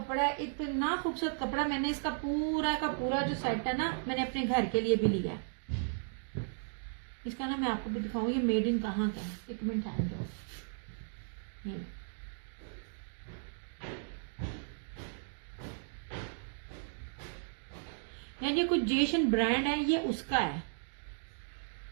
है, इतना खूबसूरत कपड़ा। मैंने इसका पूरा का पूरा जो सेट है ना, मैंने अपने घर के लिए भी लिया। इसका ना मैं आपको भी दिखाऊं ये मेड इन कहाँ का है, 1 मिनट हैंड दो। यार ये कुछ जेशन ब्रांड है, ये उसका है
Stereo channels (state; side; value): silent; left; digital silence